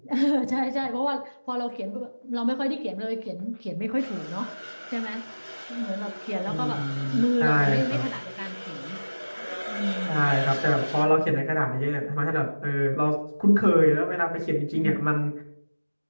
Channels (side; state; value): both; inverted; correlation -1.00